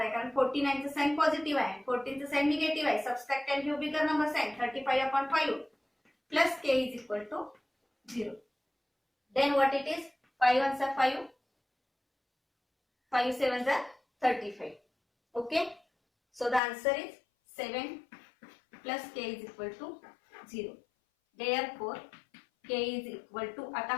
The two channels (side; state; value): right; drops out; at 16.6 s